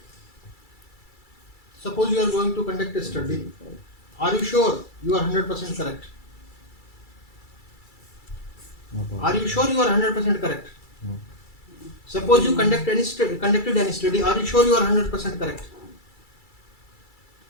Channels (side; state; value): right; late; 2.3 ms